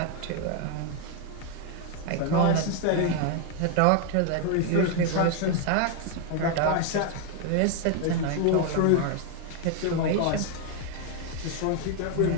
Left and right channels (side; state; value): both; different; correlation 0.01